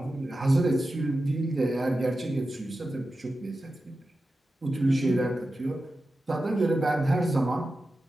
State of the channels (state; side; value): normal; both; correlation 0.92